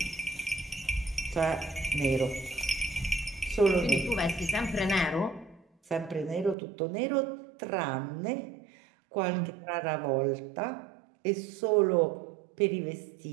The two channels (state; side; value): drops out; left; at 6.6 s